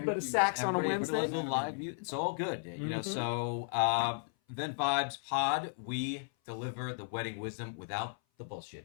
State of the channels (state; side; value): silent; right; 55 dB below the other